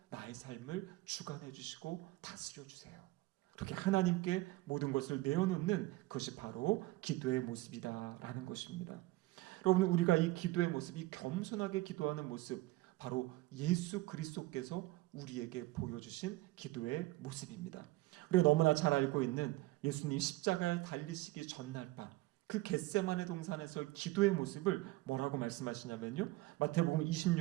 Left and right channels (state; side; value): quieter; left; 19.1 dB